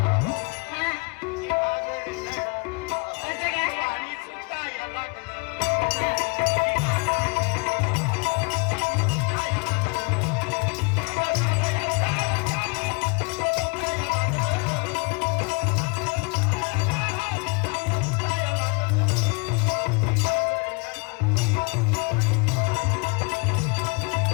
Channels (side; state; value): right; quieter; 31.9 dB